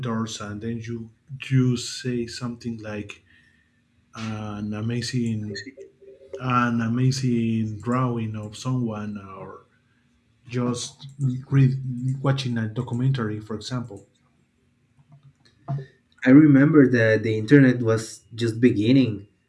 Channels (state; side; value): identical; both; correlation 1.00